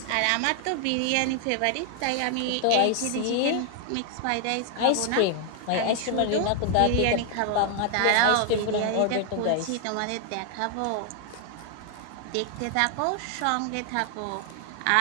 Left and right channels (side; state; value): both; different; correlation 0.00